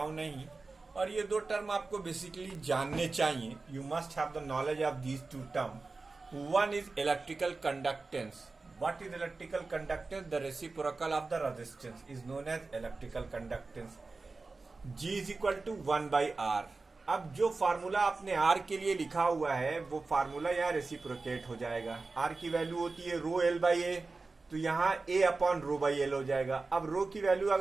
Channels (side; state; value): left; quieter; 3.8 dB